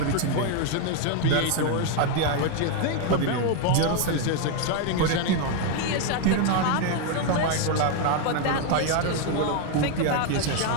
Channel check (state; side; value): different; both; correlation 0.01